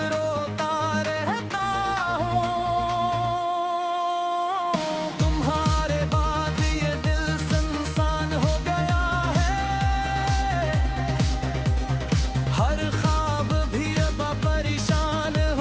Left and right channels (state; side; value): identical; both; correlation 1.00